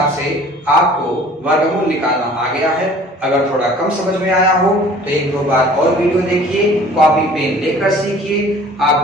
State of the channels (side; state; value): both; normal; correlation 0.49